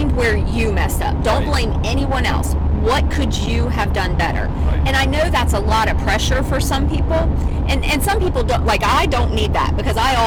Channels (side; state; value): both; identical; correlation 1.00